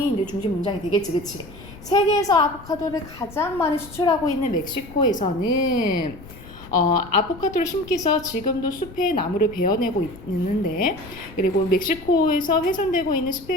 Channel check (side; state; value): left; noise; rumble, 18 dB below the sound